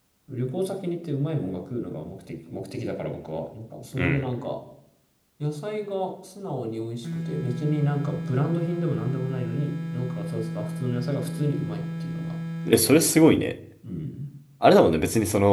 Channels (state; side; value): identical; both; correlation 1.00